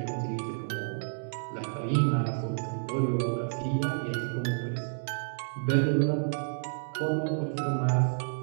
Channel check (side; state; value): left; silent; digital silence